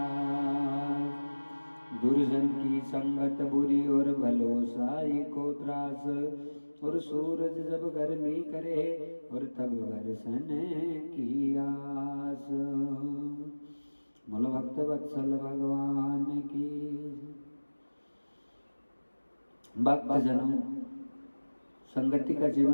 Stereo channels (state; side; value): inverted; both; correlation -1.00